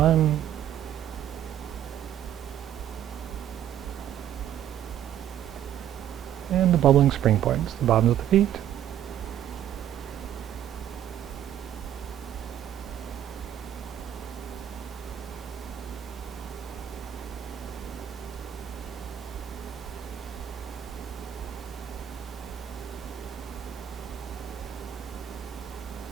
And the bubbling spring points, the bottoms of the feet.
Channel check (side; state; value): left; quieter; 10.8 dB